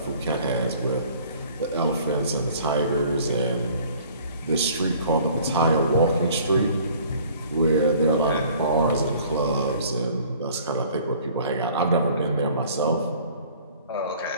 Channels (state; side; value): inverted; both; correlation -0.52